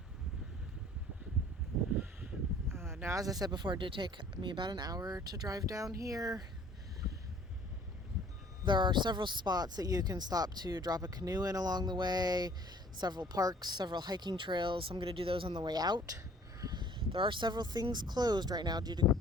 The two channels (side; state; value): both; normal; correlation 0.54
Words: Now, as I said before, it did take me about an hour to drive down here. There are several spots that you can stop to drop a canoe in along the way, several parks, several hiking trails. I'm going to do those on the way out. There are several things closed right now due to